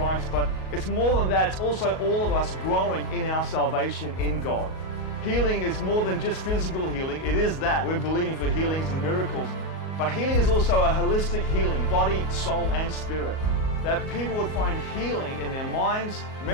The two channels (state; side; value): late; right; 38 ms